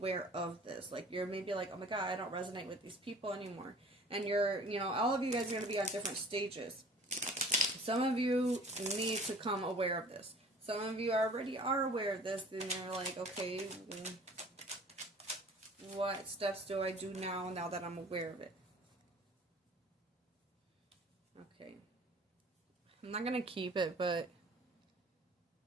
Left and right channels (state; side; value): normal; both; correlation 0.48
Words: of this. Like, you're maybe like, oh my God, I don't resonate with these people anymore. And all of you guys are going to be on different stages. Some of you need to come aware of this. Some of you already are aware of this, and you're like, okay, what steps do I do now that I'm aware of it? Okay. I'm not gonna keep it, but